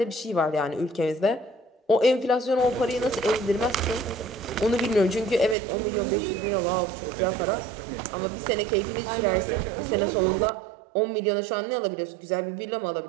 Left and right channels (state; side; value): drops out; left; at 5.6 s